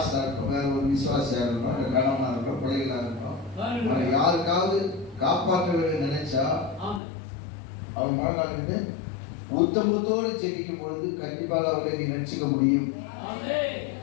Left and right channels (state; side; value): drops out; right; at 7.0 s